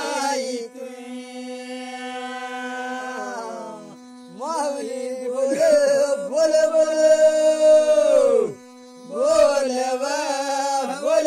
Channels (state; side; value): identical; both; correlation 1.00